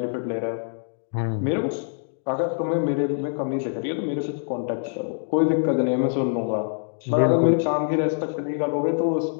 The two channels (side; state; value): right; silent; digital silence